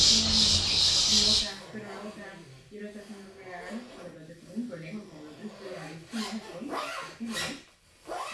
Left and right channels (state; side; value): identical; both; correlation 1.00